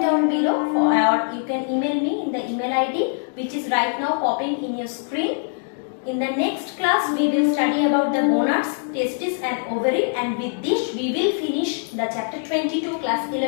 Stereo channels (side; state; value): right; silent; 62 dB below the other